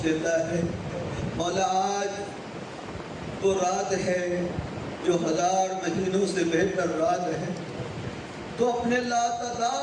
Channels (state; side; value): identical; both; correlation 1.00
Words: دیتا ہے مولا آج تو رات ہے جو 1000 مہینوں سے بہتر رات ہے تو اپنے